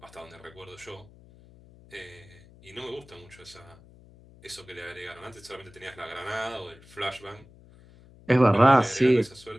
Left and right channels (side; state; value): left; noise; hum, 24 dB below the sound